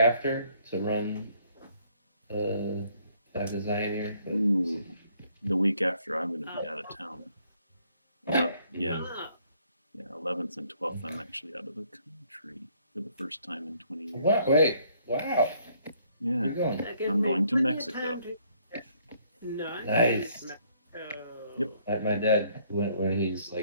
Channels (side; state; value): both; inverted; correlation -0.66